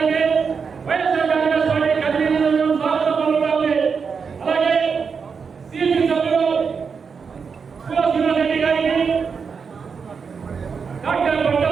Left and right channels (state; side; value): quieter; left; 5.8 dB